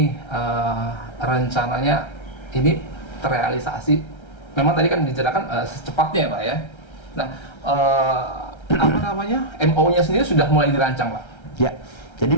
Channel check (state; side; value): late; right; 1.3 ms